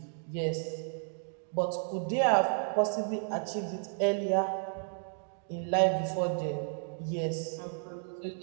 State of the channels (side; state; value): left; silent; 56 dB below the other